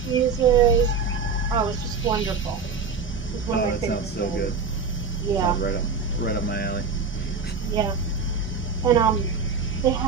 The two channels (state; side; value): quieter; left; 4.9 dB